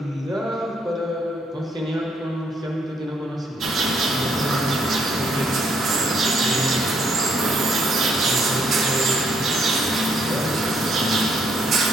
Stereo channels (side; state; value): both; normal; correlation 0.71